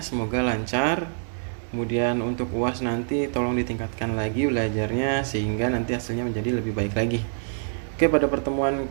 Semoga lancar. Kemudian untuk UAS nanti tolong ditingkatkan lagi belajarnya sehingga nanti hasilnya menjadi lebih baik lagi. Oke, pada pertemuan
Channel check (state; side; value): silent; left; digital silence